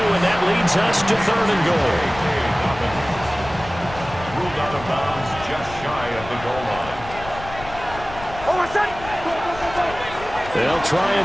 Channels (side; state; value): left; noise; rumble, 14 dB below the sound